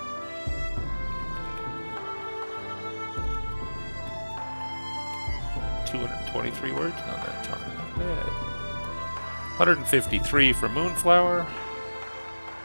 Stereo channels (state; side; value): inverted; both; correlation -1.00